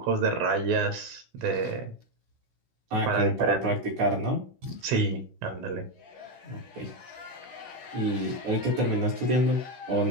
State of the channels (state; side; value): late; left; 16 ms